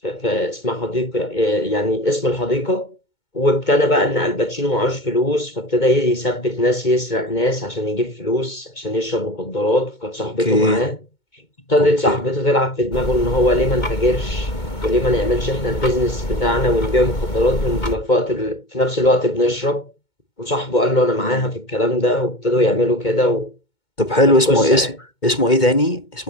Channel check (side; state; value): right; late; 2.2 ms